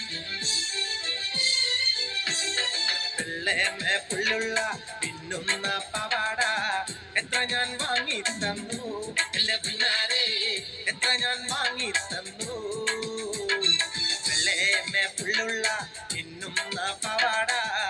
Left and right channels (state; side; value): identical; both; correlation 1.00